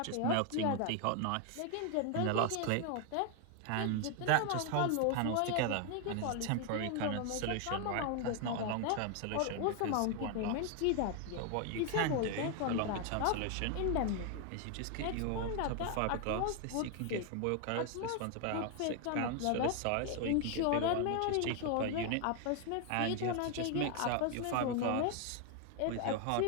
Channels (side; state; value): both; different; correlation 0.00